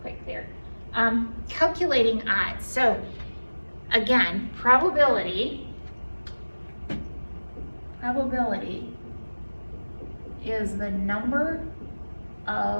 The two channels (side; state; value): both; inverted; correlation -1.00